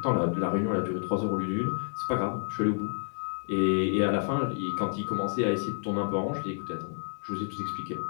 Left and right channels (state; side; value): silent; right; 58 dB below the other